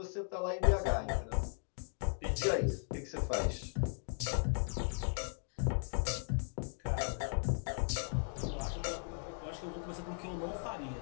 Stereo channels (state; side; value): silent; right; digital silence